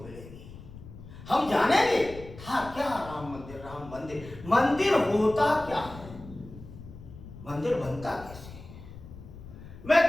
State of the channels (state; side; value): noise; left; rumble, 16 dB below the sound